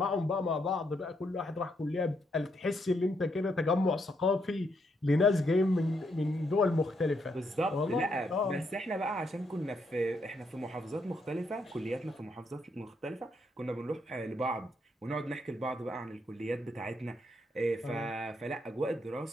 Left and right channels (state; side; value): normal; both; correlation 0.77